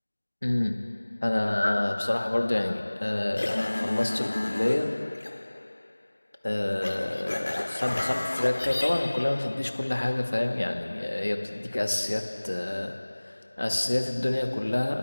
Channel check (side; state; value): both; inverted; correlation -1.00